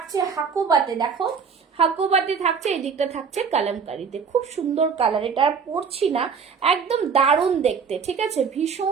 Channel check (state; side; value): quieter; left; 6.1 dB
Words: হাকুবাতে, দেখো হাকুবাতে থাকছে, এই দিকটা থাকছে কালামকারীতে। খুব সুন্দর কালার, এটা আর পরছি না, একদম দারুণ দেখতে, ঠিক আছে?